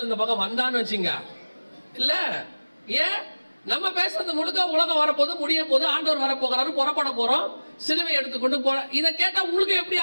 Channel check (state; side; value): inverted; both; correlation -1.00